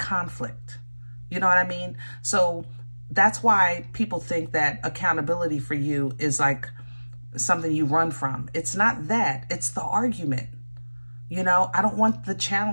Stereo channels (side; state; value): both; inverted; correlation -1.00